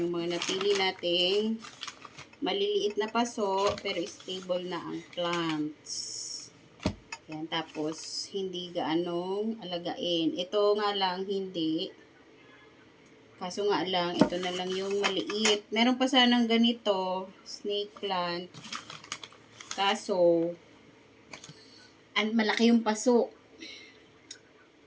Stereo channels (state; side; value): identical; both; correlation 1.00